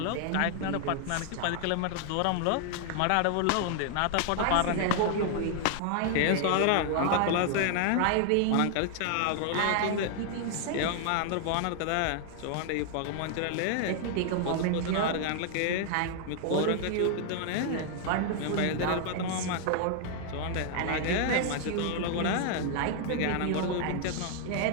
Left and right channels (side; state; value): both; different; correlation 0.00